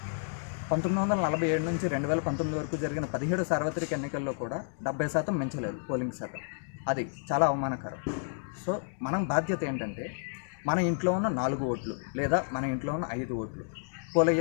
1947 నుంచి 2019 వరకు జరిగిన 17 సార్వత్రిక ఎన్నికల్లో కూడా 70% మించలేదు పోలింగ్ శాతం. అది చాలా అవమానకరం. సో మనం బాధ్యత ఏంటంటే మన ఇంట్లో ఉన్న 4 ఓట్లు లేదా మన ఇంట్లో ఉన్న 5 ఓట్లు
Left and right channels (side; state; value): right; silent; digital silence